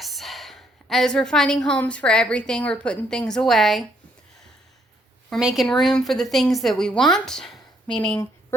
As we're finding homes for everything, we're putting things away. We're making room for the things that we want, meaning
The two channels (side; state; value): both; normal; correlation 0.70